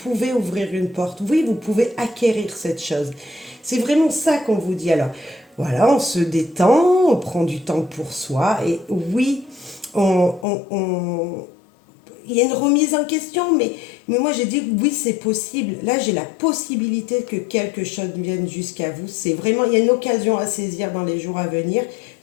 ouvrir une porte, oui, vous pouvez acquérir cette chose. C'est vraiment ça qu'on vous dit. Alors, voilà, on se détend, on prend du temps pour soi, et oui, il y a une remise en question, mais moi j'ai dit oui, c'est possible. Là, j'ai la possibilité que quelque chose vienne jusqu'à vous. C'est vraiment, il y a une occasion à saisir dans les jours à venir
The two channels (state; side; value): drops out; right; at 10.5 s